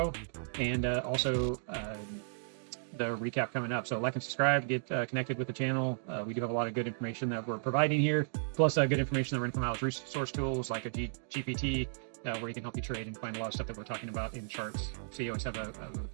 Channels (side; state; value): left; silent; digital silence